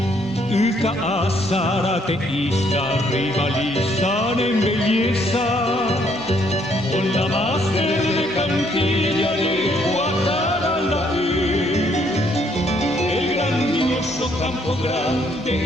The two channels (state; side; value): normal; both; correlation 0.68